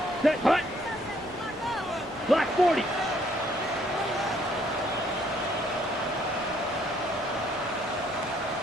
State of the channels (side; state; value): both; normal; correlation 0.66